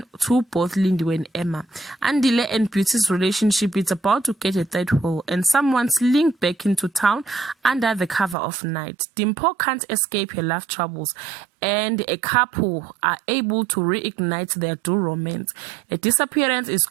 to both Lindiwe and Emma. Andile and Beauty's relationship is about to get a third hole, and someone's linked back into town under the cover of night. Dimpo can't escape her love troubles, and a couple are able to reignite their dual romance. A disappearance is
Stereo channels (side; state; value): left; drops out; at 8.3 s